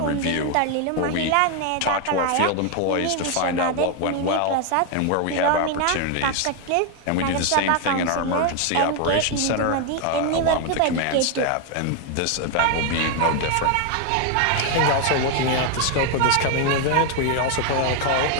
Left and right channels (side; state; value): both; different; correlation 0.01